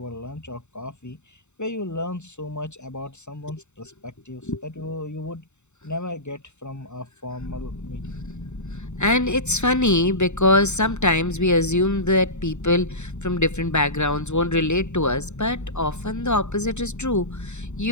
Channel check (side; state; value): right; late; 0.83 ms